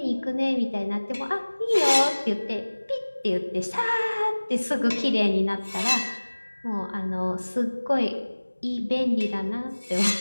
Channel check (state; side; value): inverted; both; correlation -1.00